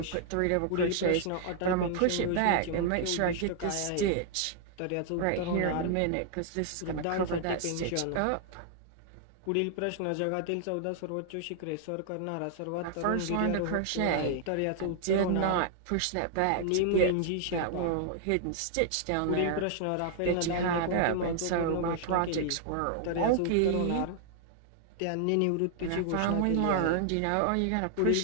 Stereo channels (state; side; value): different; both; correlation -0.01